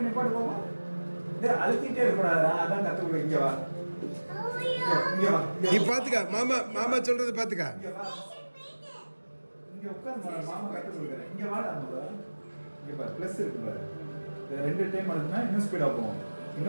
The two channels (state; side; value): inverted; both; correlation -1.00